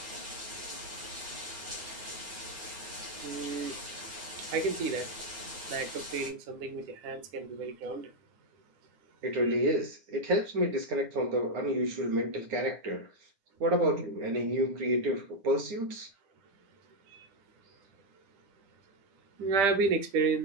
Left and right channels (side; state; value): left; late; 9.6 ms